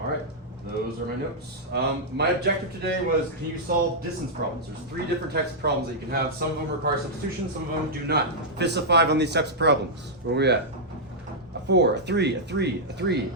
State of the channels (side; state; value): both; normal; correlation -0.07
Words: those are my notes. My objective today was, can you solve distance problems? There's 3 different types of problems that you can have. Some of them require substitution, some of them do not. Fists of 5 on these types of problems. Where are we at? A 4, a 3, a 3, a 3, a